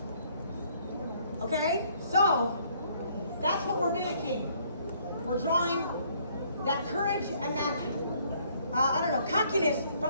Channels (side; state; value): both; inverted; correlation -0.64